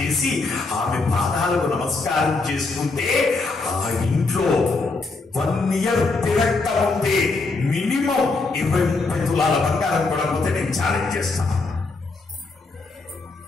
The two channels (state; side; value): quieter; right; 3.7 dB